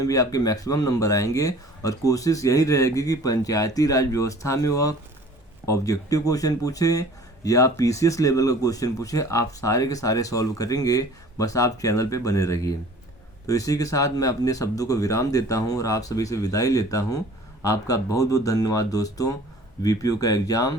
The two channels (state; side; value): normal; both; correlation 0.47